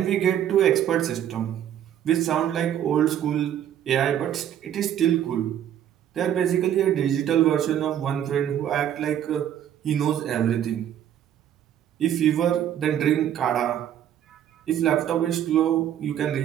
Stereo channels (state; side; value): quieter; left; 10.4 dB